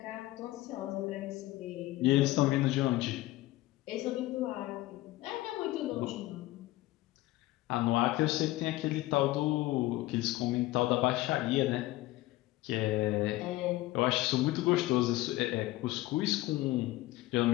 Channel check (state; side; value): quieter; right; 17.7 dB